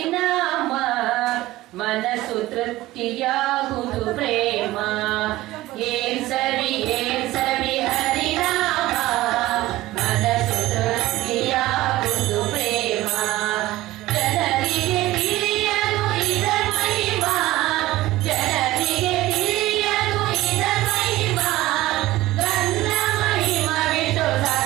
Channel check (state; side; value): quieter; left; 17.2 dB